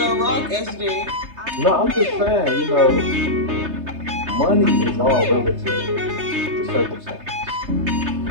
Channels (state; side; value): late; left; 3.3 ms